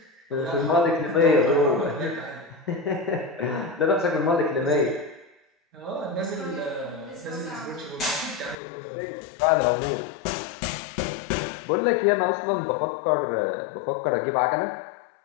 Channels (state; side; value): drops out; right; at 8.6 s